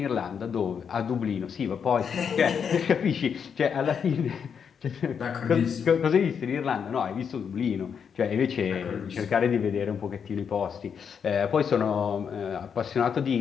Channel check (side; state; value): right; quieter; 7.0 dB